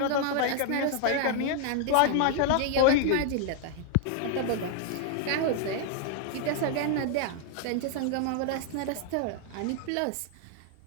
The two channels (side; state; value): both; different; correlation 0.00